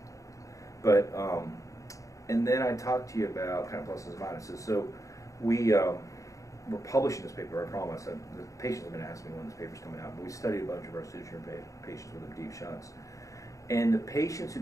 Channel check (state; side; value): late; right; 0.16 ms